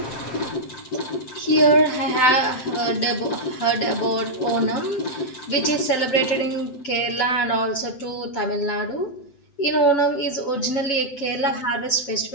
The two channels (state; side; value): late; right; 7.8 ms